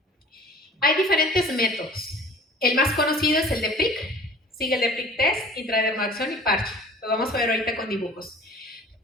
Hay diferentes métodos. El más conocido es el de PRIC, sigue el de PRIC test, intradermoacción y parche. Lo vamos a ver ahorita con dibujos.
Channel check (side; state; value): both; normal; correlation 0.47